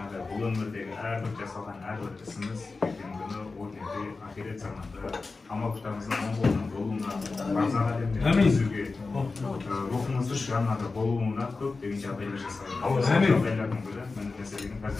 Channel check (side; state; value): right; quieter; 3.9 dB